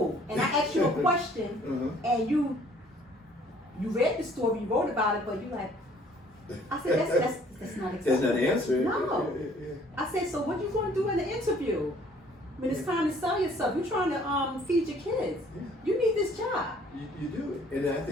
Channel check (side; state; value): both; normal; correlation 0.58